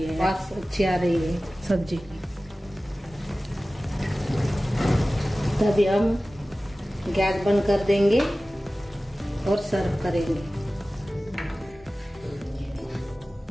है, वास अच्छी आ रही है सब्जी की। तभी हम गैस बंद कर देंगे और सर्व करेंगे।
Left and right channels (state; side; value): normal; both; correlation 0.97